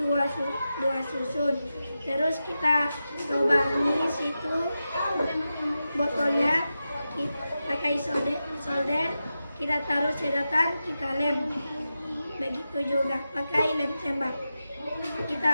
susun. Terus kita lubangi situ botolnya, pakai solder, kita taruh sedotan, kita lem. Begitu juga pakai lem tembak.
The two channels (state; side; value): inverted; both; correlation -0.91